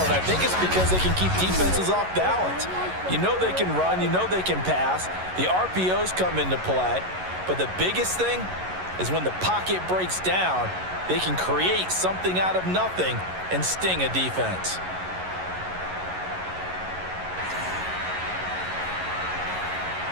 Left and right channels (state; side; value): late; left; 11 ms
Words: and I think it's because they can keep defenses off balance. You know they can run, you know they can pass. The RPOs come into play, but the biggest thing is when the pocket breaks down, they can create something out of nothing and sting a defense.